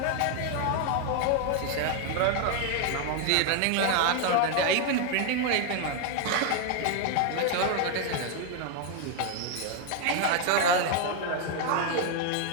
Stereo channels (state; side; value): different; both; correlation 0.01